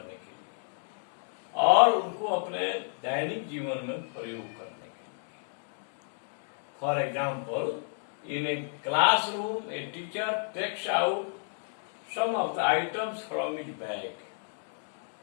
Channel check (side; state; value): right; silent; digital silence